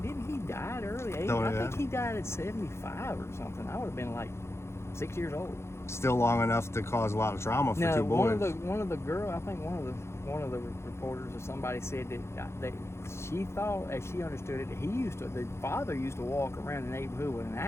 didn't he die at early age? I think he died at 75 or something. I would have been like 6 years old. Still long enough to cause a lot of trauma for two boys. One of the girl, I think one of the reporters or somebody said that she thought, as she understood it, that the father used to walk around the neighborhood with an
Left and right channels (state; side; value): late; right; 0.13 ms